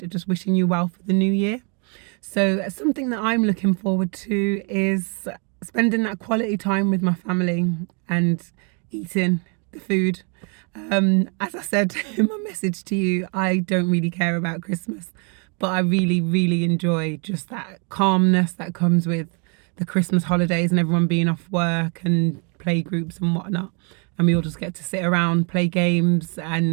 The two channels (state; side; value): quieter; left; 36.7 dB